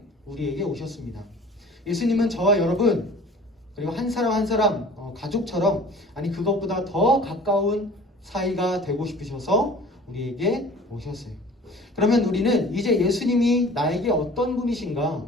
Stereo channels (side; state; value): both; normal; correlation 0.45